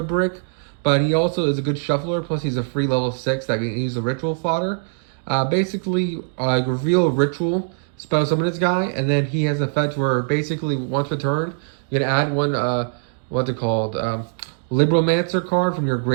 brick, but he also is a good shuffler. Plus, he's a free level 6 that can use a ritual fodder. Basically, reveal a ritual, spell summon this guy, and then he has an effect where basically once per turn, you can add one, what's it called, Libromancer card from your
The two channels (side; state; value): left; silent; digital silence